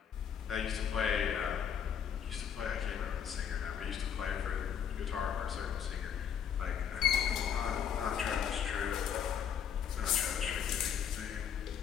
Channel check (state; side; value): quieter; right; 8.3 dB